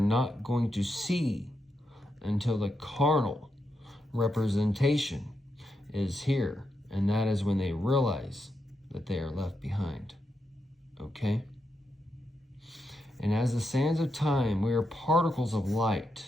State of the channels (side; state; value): both; normal; correlation 0.84